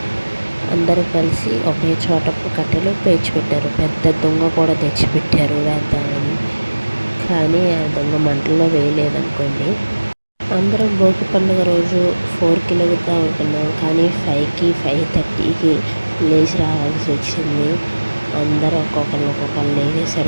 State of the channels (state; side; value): inverted; both; correlation -1.00